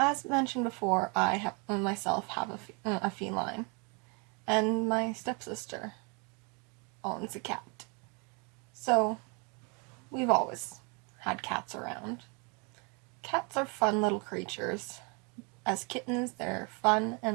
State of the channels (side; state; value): left; quieter; 33.1 dB